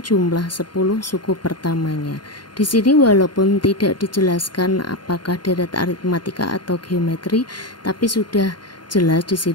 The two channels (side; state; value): right; late; 0.71 ms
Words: 10 suku pertamanya. Di sini walaupun tidak dijelaskan apakah deret aritmatika atau geometri, tapi sudah jelas di